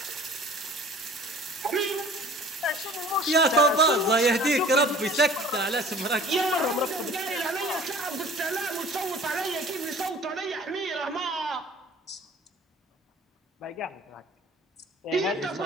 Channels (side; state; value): both; normal; correlation 0.48